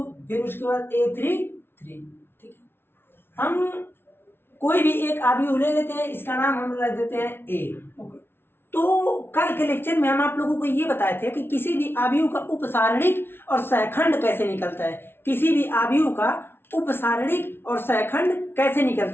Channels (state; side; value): late; right; 0.11 ms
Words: फिर उसके बाद A33। ठीक है, हम कोई भी एक आव्यूह ले लेते हैं, इसका नाम हम रख देते हैं A। ओके, तो कल के लेक्चर में हम आप लोगों को ये बताए थे कि किसी भी आव्यूह का उपसारणिक और सहखंड कैसे निकलता है। किसी भी आव्यूह का उपसारणिक और सहखंड कैसे